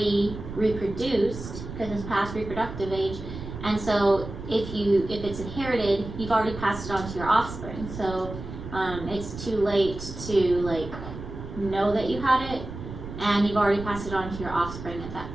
reproduced because it's past reproductive age, and so if it's inherited, you've already passed it on to your offspring. So it's too late to like know that you had it and you've already passed it on to your offspring at that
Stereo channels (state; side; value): noise; right; rumble, 10 dB below the sound